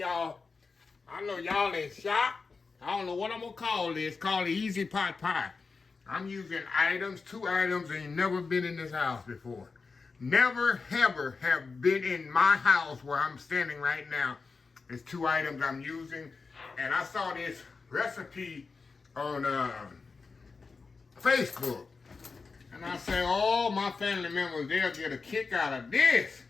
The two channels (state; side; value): quieter; right; 4.5 dB